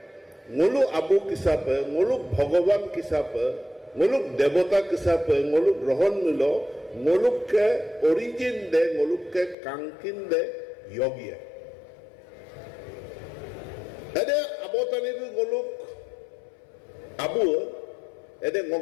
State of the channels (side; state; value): right; drops out; at 9.6 s